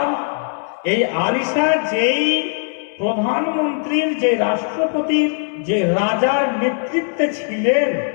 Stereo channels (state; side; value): silent; right; 66 dB below the other